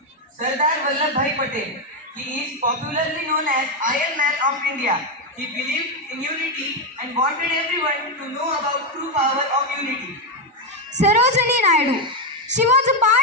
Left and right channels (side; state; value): both; normal; correlation 0.06